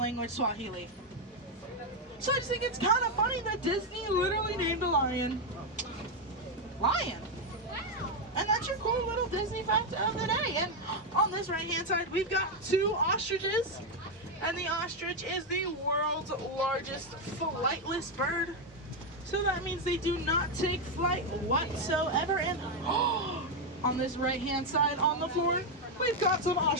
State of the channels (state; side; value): normal; both; correlation 0.04